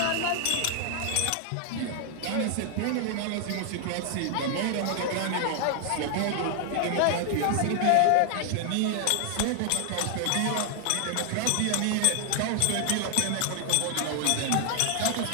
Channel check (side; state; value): both; different; correlation 0.00